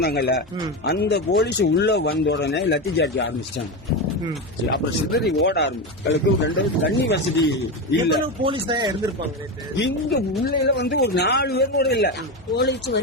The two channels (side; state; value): both; normal; correlation 0.16